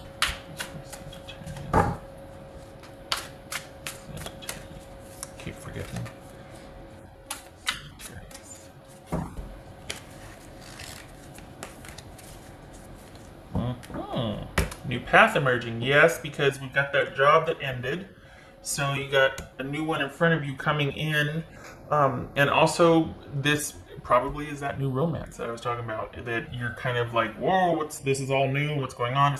Sagittarius. Keep forgetting. Sagittarius. New path emerging. Yes, because we've got that job that ended. So you got a new one in front of you coming in. And also this probably is that new romance that I was talking about, that you're kind of like, whoa, this is all new, what's going on?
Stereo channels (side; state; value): both; identical; correlation 1.00